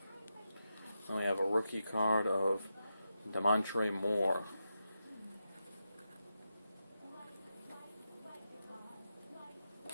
Then we have a rookie card of Demontre Moore.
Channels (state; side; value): inverted; both; correlation -0.87